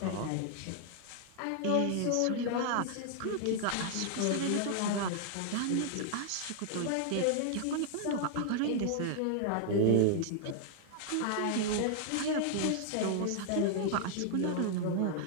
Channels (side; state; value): both; different; correlation 0.00